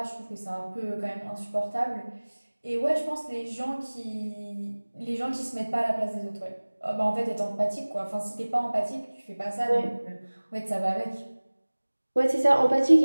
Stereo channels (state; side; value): inverted; both; correlation -1.00